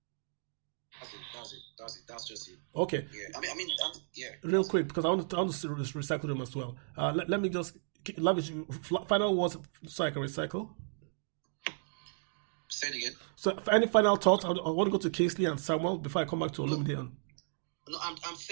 That's just it. Okay. Yeah. Yeah. Real quick, because I want to recycle them as well. Let me just, Lavish, final words so I can recycle. Say it again. So, any final thoughts? I want to go to Kingsley and Samuel before I come back to Olumide. No, I'm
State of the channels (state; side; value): silent; left; digital silence